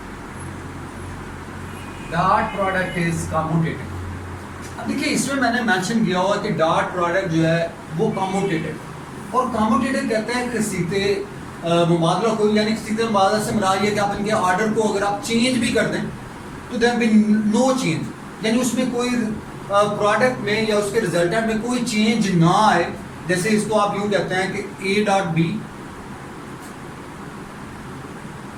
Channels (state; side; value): identical; both; correlation 1.00